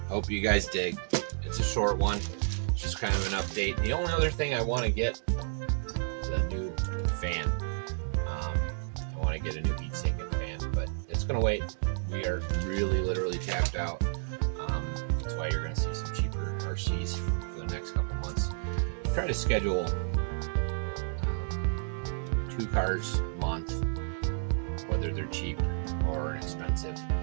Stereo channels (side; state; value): left; silent; digital silence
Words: hope you guys dig. It's a short one, it's just kind of an update. The only other thing I want to get is a new fan. I want to get a new heat sink and fan, but it's gonna wait. We are really literally tapped out. That's why you're going to see some cheaper RCs for the next couple months. Try to schedule 2 cars a month, whether they're cheap or expensive.